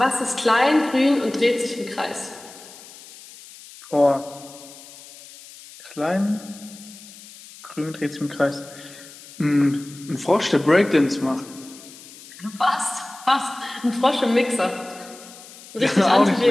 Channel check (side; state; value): left; noise; hiss, 19 dB below the sound